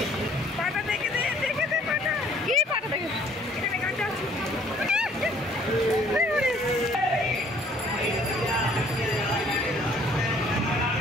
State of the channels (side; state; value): both; normal; correlation 0.59